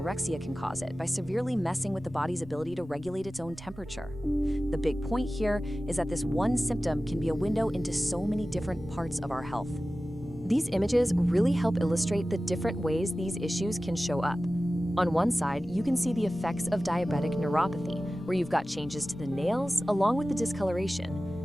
can cause it by severely messing with the body's ability to regulate its own temperature. The big point here is that this one symptom can be a window into so many different parts of our health. These images really help illustrate the different ways these issues can show up. On one side, you can see the effects of diabetic neuropathy, where you've got changes to the nails along with the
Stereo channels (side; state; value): right; noise; rumble, 22 dB below the sound